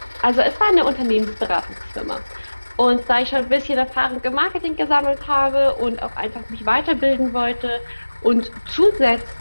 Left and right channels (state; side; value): inverted; both; correlation -1.00